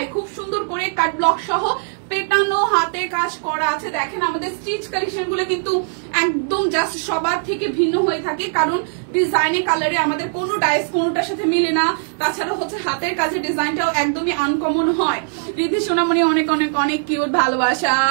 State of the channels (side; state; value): left; silent; digital silence